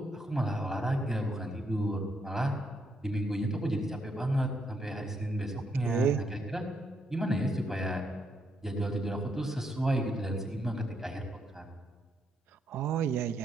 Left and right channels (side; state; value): both; normal; correlation 0.76